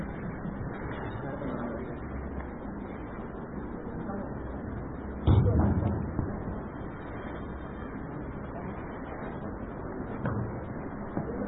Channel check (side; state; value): both; identical; correlation 1.00